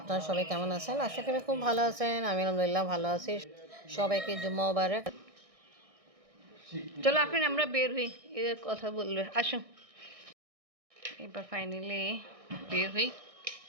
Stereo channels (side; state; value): left; late; 1.6 ms